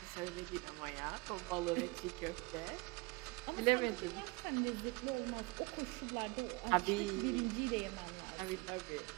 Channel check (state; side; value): quieter; left; 25.3 dB